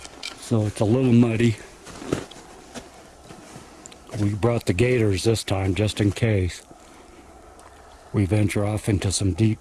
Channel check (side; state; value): both; identical; correlation 1.00